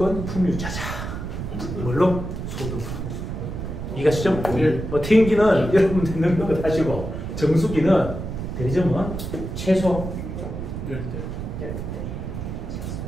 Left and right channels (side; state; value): right; noise; rumble, 6 dB below the sound